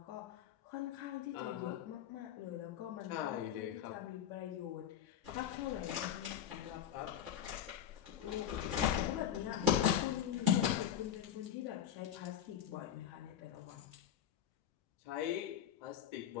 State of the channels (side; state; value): right; quieter; 10.1 dB